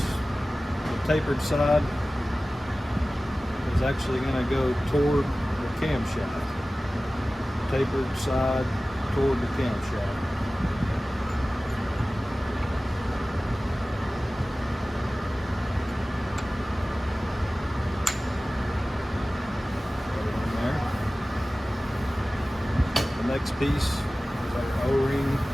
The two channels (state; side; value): normal; both; correlation 0.97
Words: the tapered side is actually going to go toward the camshaft. Tapered side toward the camshaft. Put it in there. The next piece is our O-ring